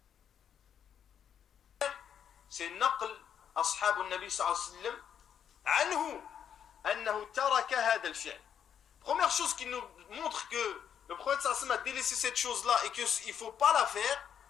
c'est naql ashab al-Nabi sallallahu alayhi wa sallam anhu annahu taraka hadha al-fi'l. Première chose qui nous montre que le prophète sallallahu alayhi wa sallam a délaissé cette chose-là et qu'il ne faut pas la faire,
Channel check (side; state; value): right; quieter; 8.5 dB